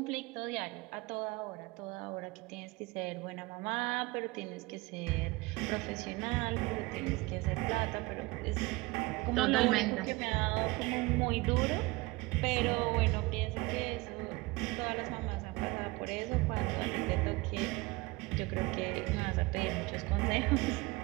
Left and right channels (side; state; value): left; quieter; 22.8 dB